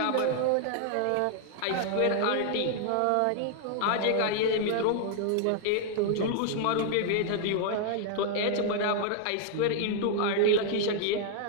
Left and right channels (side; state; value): both; different; correlation 0.00